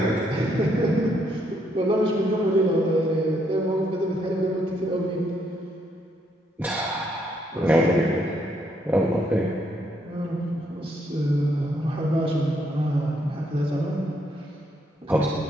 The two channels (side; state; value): both; normal; correlation 0.73